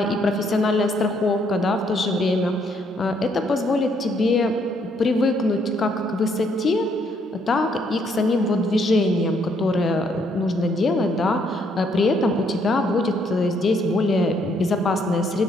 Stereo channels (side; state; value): both; normal; correlation 0.70